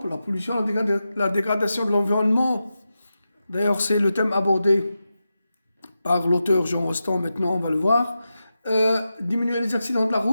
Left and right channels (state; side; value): inverted; both; correlation -0.91